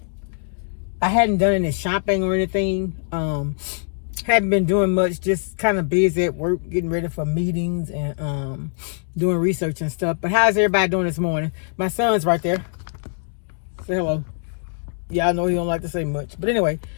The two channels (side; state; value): right; silent; digital silence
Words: I hadn't done any shopping or anything. Haven't been doing much. Just kind of busy at work, getting ready for meetings and doing research and stuff. But how's everybody doing this morning? My son's right there. Say hello. Yeah, I know he don't like to say much. But anyway,